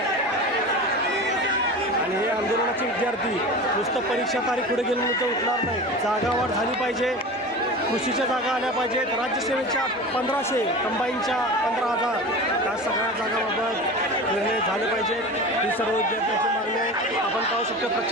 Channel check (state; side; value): normal; both; correlation 0.32